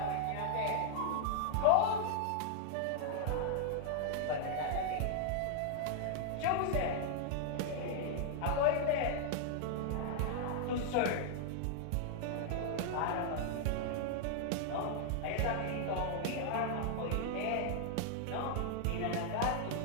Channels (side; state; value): both; different; correlation 0.00